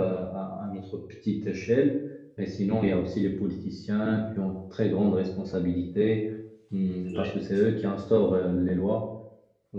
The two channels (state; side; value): identical; both; correlation 1.00